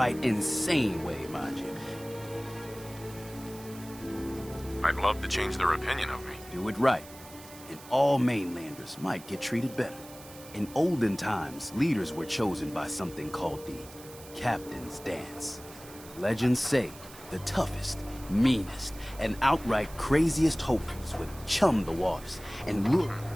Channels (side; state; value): right; noise; hiss, 18 dB below the sound